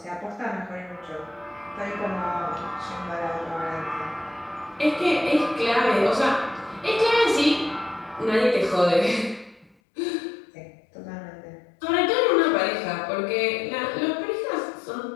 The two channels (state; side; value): drops out; right; at 9.8 s